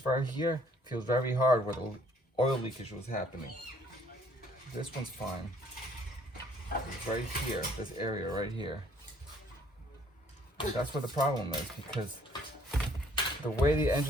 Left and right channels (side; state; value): both; normal; correlation 0.61